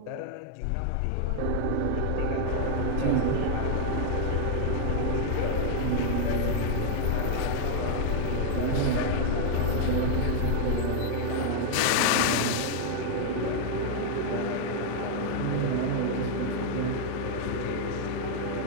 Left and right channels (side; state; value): both; different; correlation 0.00